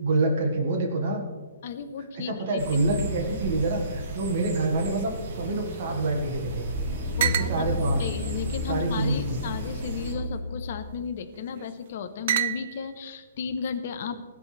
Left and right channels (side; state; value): both; inverted; correlation -0.55